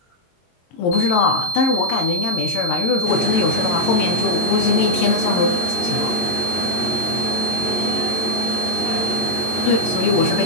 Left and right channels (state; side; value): late; right; 23 ms